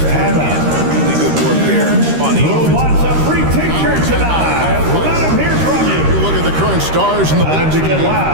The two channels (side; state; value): left; late; 13 ms